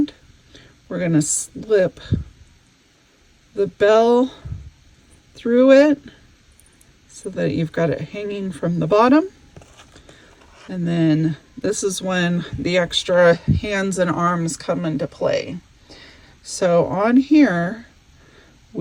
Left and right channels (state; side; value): identical; both; correlation 1.00